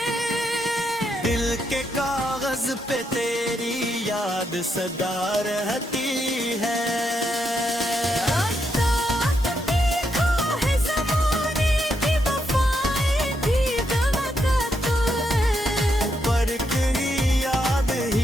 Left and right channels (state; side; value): normal; both; correlation 0.80